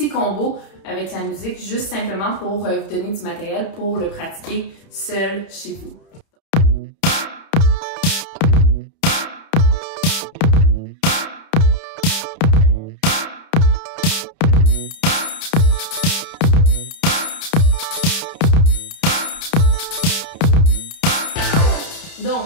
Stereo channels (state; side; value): late; right; 31 ms